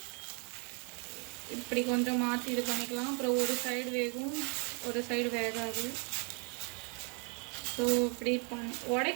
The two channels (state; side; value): quieter; left; 36.8 dB